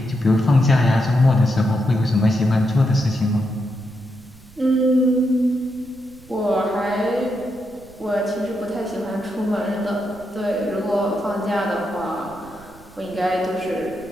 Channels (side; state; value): right; noise; rumble, 23 dB below the sound